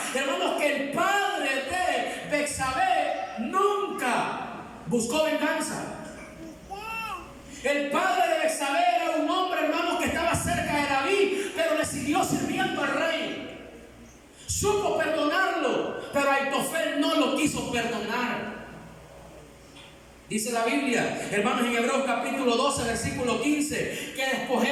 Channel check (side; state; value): both; identical; correlation 1.00